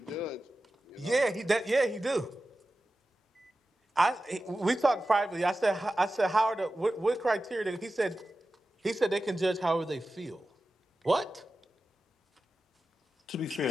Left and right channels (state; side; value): normal; both; correlation 0.94